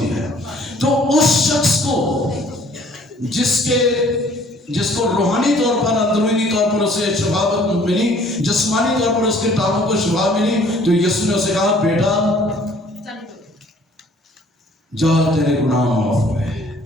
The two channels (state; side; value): normal; both; correlation 0.56